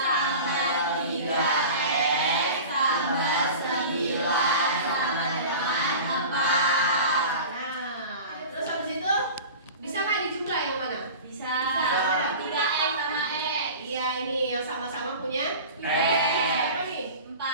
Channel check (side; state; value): both; inverted; correlation -0.36